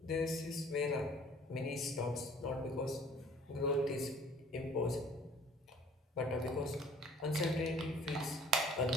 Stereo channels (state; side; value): normal; both; correlation 0.53